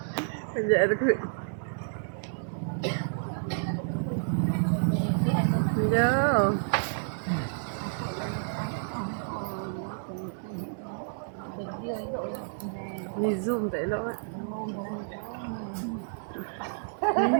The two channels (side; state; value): left; silent; digital silence